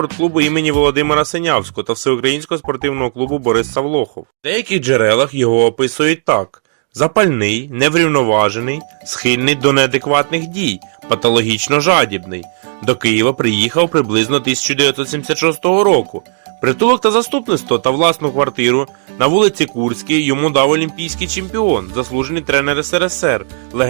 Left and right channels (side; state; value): left; silent; digital silence